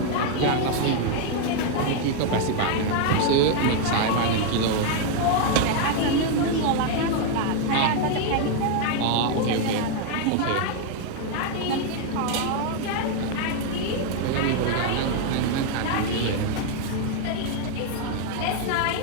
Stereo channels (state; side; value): different; both; correlation 0.01